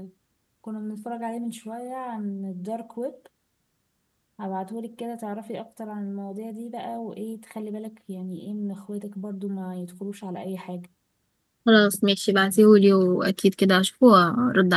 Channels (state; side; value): identical; both; correlation 1.00